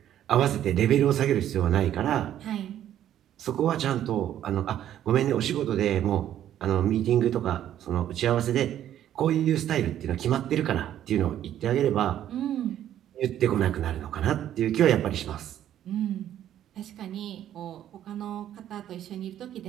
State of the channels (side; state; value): left; quieter; 11.3 dB